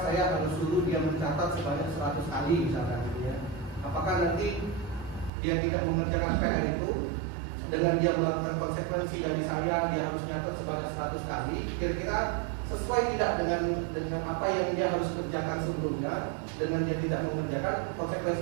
saya harus suruh dia mencatat sebanyak 100 kali misalkan gitu ya. Apakah nanti dia tidak mengerjakan PR itu dengan dia melakukan konsekuensi dari saya dia harus mencatat sebanyak 100 kali, kira-kira sesuai tidak dengan apa yang dia harus kerjakan sebelumnya, dengan dia tidak mengerjakan,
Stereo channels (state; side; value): drops out; left; at 5.3 s